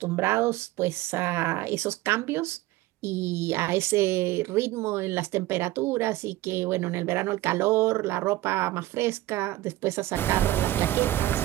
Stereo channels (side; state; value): left; quieter; 16.7 dB